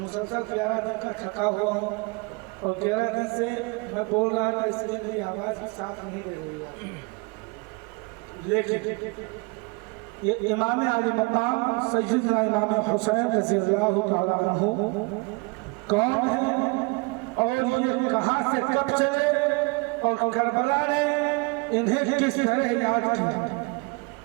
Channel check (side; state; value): left; quieter; 27.8 dB